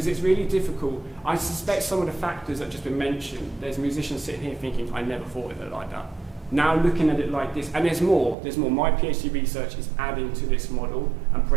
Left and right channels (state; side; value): drops out; left; at 8.3 s